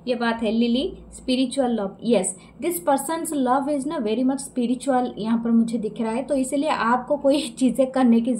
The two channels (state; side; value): identical; both; correlation 1.00